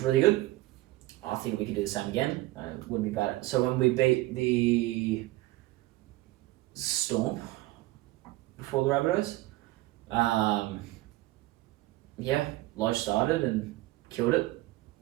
really good. I think we could do the same again. Wouldn't be bad. So when we beat the Storm before the Rabbitohs, yeah, Lodge started and killed it.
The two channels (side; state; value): left; quieter; 18.2 dB